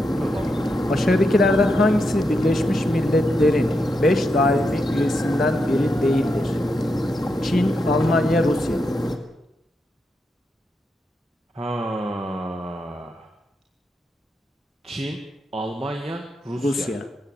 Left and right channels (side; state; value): both; normal; correlation 0.84